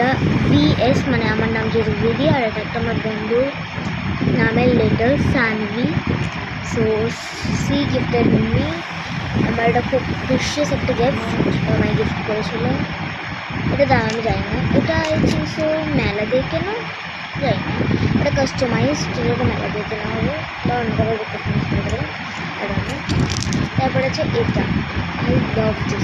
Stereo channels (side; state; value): both; identical; correlation 1.00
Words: BS, মানে আমার নাম যেহেতু দিদি, আর এটা একটা আমার বন্ধুর নামের letter Sanvi. So she gifted me. আমার এটা খুব প্রিশিয়াস একটা গিফট, আমায় গিফট করেছিল। এটা দাম আমি জানি না, এটা আই থিঙ্ক সো মেলা দিয়ে কেনা, জানি না। এটা কাস্টমাইজ, যেটা মেলা দিয়ে কেনা হবে বা অন্য কারো কাস্টমাইজ করে দেবে। তারপর আছে এটা আই লাভ